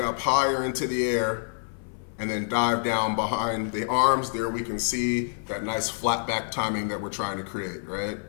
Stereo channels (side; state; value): right; silent; 60 dB below the other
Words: higher into the air, and then dive down behind the arms. There we can see that nice flat back timing that we're trying to create, right?